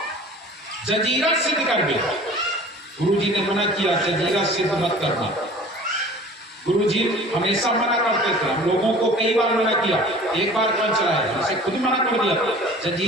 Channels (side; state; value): both; normal; correlation 0.44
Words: जजीरा सिद्ध कर गए। गुरु जी ने मना किया, जजीरा सिद्ध मत करना। गुरु जी हमेशा मना करते थे, हम लोगों को कई बार मना किया, एक बार कौन चलाया, इसे खुद मना कर दिया